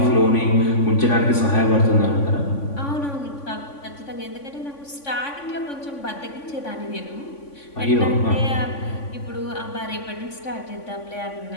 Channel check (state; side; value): late; right; 3.5 ms